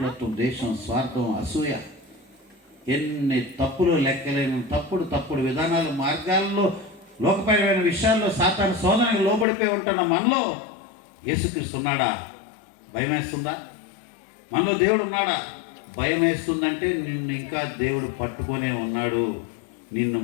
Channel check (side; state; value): right; drops out; at 9.5 s